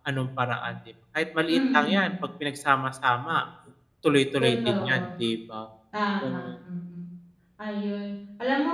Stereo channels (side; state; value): both; identical; correlation 1.00